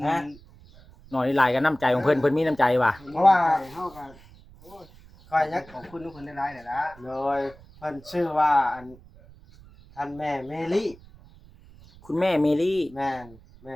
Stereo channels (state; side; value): noise; right; rumble, 23 dB below the sound